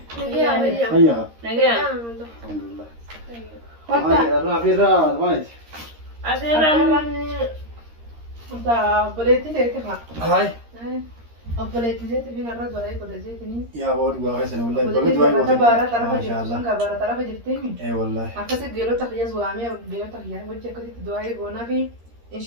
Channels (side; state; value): left; late; 13 ms